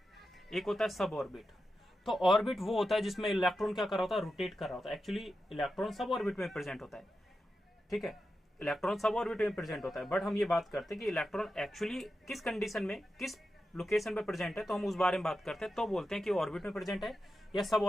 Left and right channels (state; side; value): normal; both; correlation 0.90